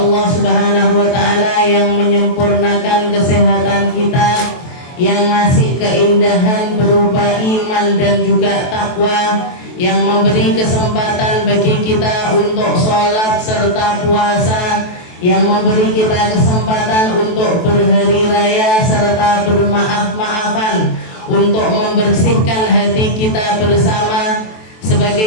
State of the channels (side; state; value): right; late; 23 ms